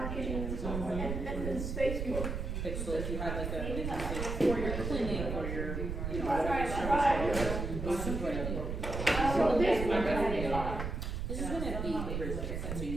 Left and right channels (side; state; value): right; noise; rumble, 3 dB below the sound